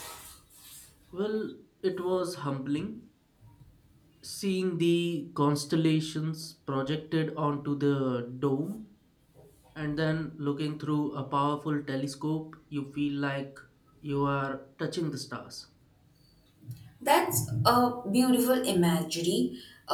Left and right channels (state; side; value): identical; both; correlation 1.00